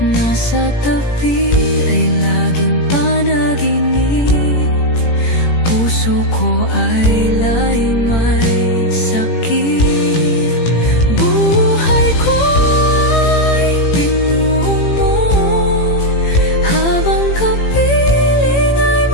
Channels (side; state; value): right; late; 18 ms